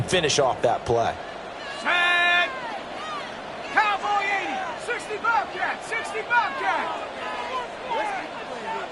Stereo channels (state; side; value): identical; both; correlation 1.00